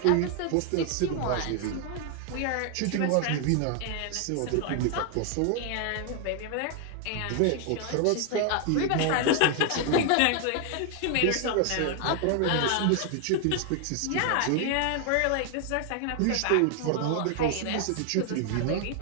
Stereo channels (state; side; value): different; both; correlation 0.00